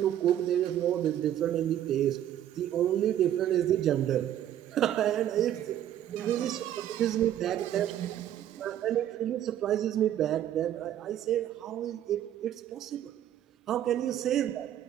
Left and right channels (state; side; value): quieter; left; 11.3 dB